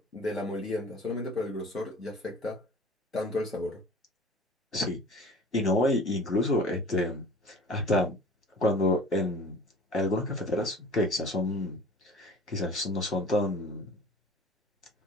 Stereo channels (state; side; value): normal; both; correlation 0.43